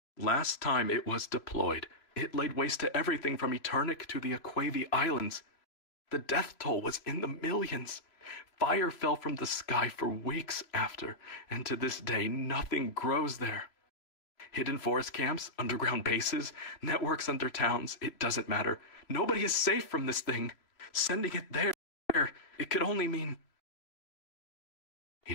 Last time it was deployed, it laid waste to everything from Eternic to the Aquavi Islands. The death toll was in the millions. Fire fell from the sky for weeks after, and to this day nothing grows there. Hidden forest camps, underground bases, networks under towns, it doesn't matter. Nobody is safe from this thing. Sending it there, it could only mean... He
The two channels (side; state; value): right; late; 3.0 ms